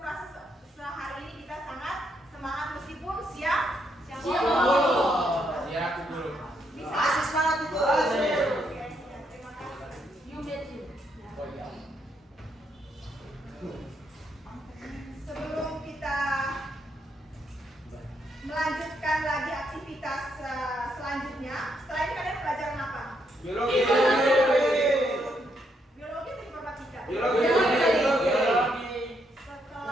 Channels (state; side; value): normal; both; correlation 0.76